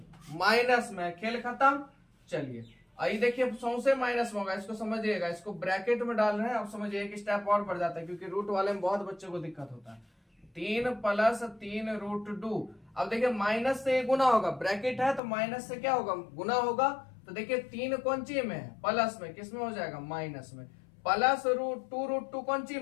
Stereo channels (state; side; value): drops out; right; at 15.2 s